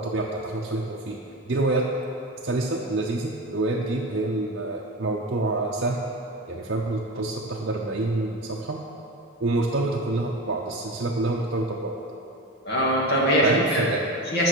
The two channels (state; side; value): normal; both; correlation 0.26